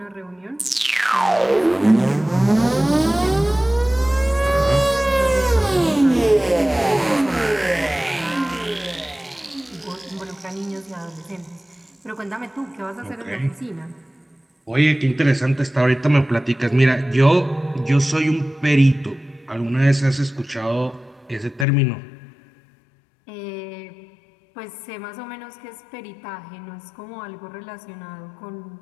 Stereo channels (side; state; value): right; drops out; at 21.7 s